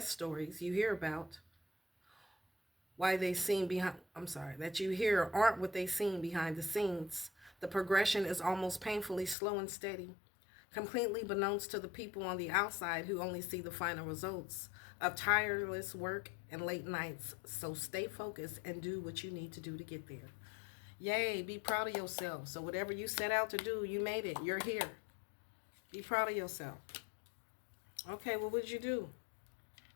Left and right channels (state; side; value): drops out; right; at 9.3 s